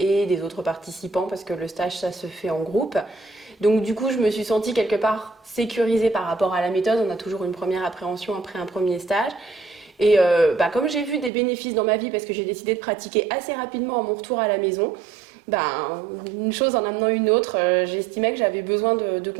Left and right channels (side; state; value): left; drops out; at 11.3 s